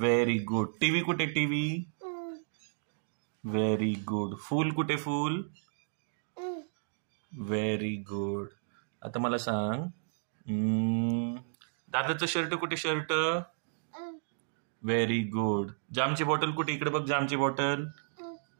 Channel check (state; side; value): silent; left; digital silence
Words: good. टीव्ही कुठे? टीव्ही. Very good. फूल कुठे? फूल. Very good. आता मला सांग, दादाचं शर्ट कुठे? शर्ट. Very good. जामची बॉटल कुठे? इकडे बघ. जामची बॉटल.